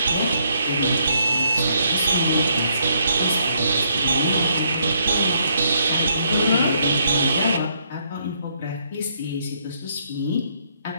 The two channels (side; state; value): both; inverted; correlation -0.72